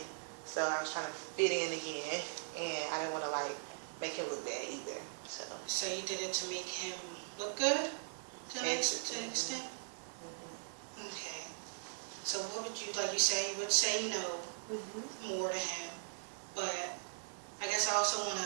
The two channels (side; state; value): left; silent; digital silence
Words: so I was trying to fit in again, and I didn't want to like make him look bad either. So you did it to make him look good, to an extent. Okay. So what would you like? You say you would say no more to him, but I guess I also want